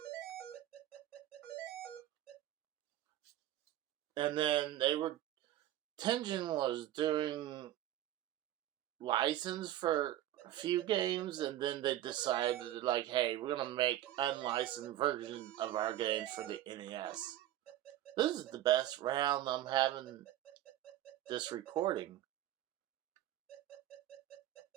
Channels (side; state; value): left; quieter; 13.4 dB